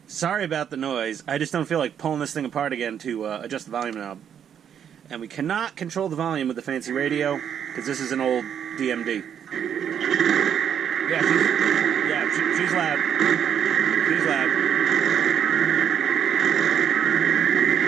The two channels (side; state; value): left; quieter; 8.7 dB